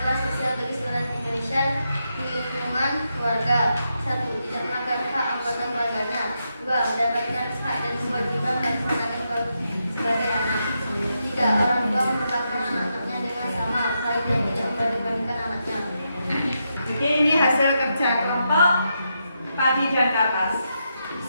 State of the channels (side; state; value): both; inverted; correlation -0.83